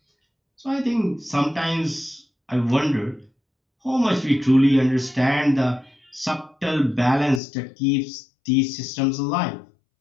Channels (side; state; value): right; drops out; at 7.4 s